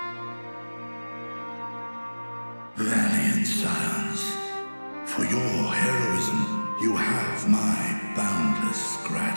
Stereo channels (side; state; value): both; inverted; correlation -1.00